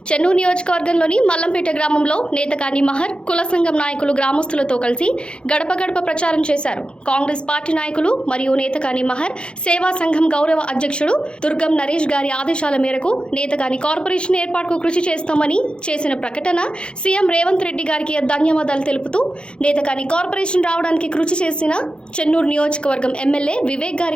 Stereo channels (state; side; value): late; right; 0.054 ms